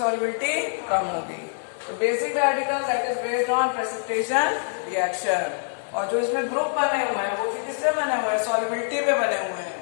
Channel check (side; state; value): right; silent; digital silence